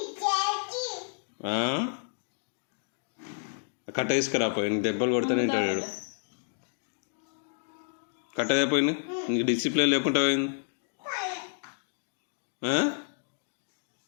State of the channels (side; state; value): right; silent; digital silence